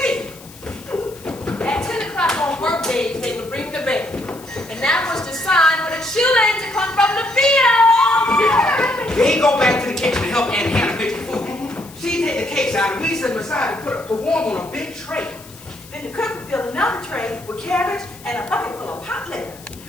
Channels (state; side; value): noise; left; hiss, 20 dB below the sound